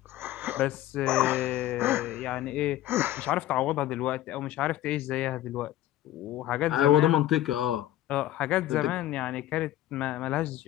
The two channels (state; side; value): quieter; right; 13.9 dB